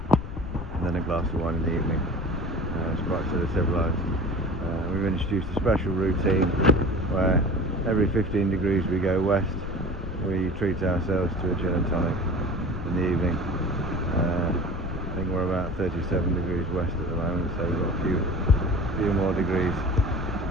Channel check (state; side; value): noise; left; rumble, 8 dB below the sound